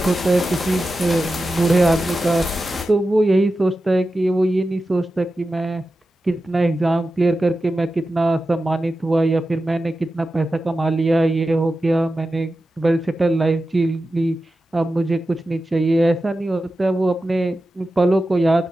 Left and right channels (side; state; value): both; normal; correlation 0.92